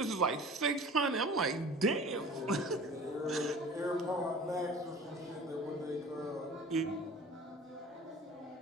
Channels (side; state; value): both; normal; correlation 0.43